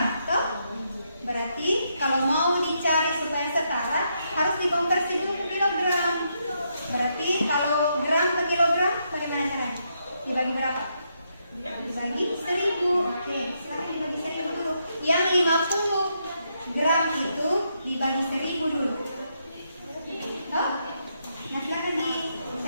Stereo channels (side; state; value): both; inverted; correlation -0.79